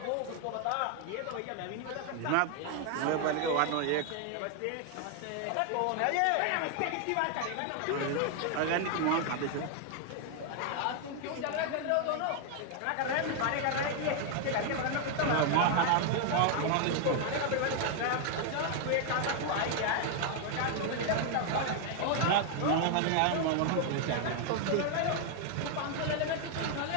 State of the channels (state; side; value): different; both; correlation 0.00